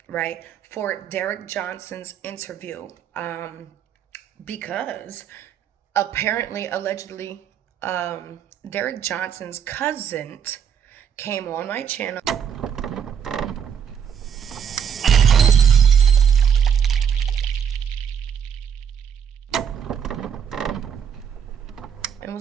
right, for Derek Johnson's interview, because apparently, allegedly, Derek Johnson's cousin came on my channel and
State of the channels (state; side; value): quieter; left; 8.0 dB